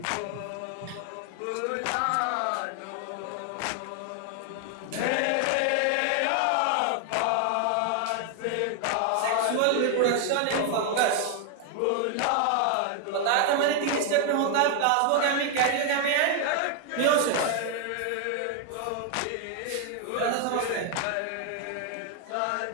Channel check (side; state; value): both; different; correlation 0.00